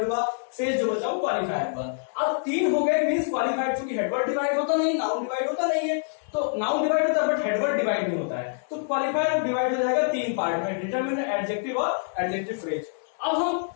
हुआ, शेष जो बचा वो क्वालिफायर हुआ। अब तीन हो गए, मींस क्वालिफायर, चूंकि हेडवर्ड डिवाइड होता नहीं, नाउन डिवाइड होता नहीं है, तो नाउन डिवाइड होता है बट हेडवर्ड डिवाइड नहीं होता है, तो क्वालिफायर डिवाइड हो जाएगा तीन पार्ट में, डिटरमिनर, एडजेक्टिव और एडजेक्टिव फ्रेज। अब हम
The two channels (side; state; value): right; silent; 57 dB below the other